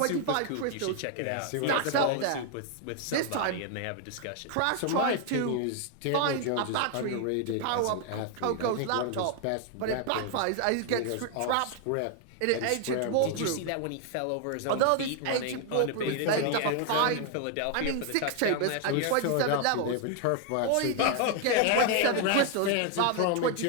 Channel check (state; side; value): different; both; correlation 0.00